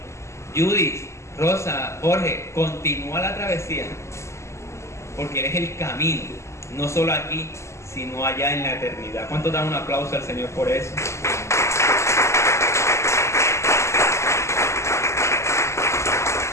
Judith, Rosa, Jorge, continúa la travesía, porque Él es el camino, no solo aquí, sino allá en la eternidad. ¿Cuántos dan un aplauso al Señor por eso?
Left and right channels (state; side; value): late; right; 0.13 ms